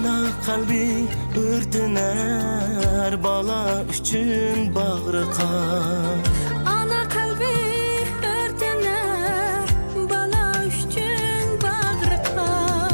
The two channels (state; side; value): inverted; both; correlation -1.00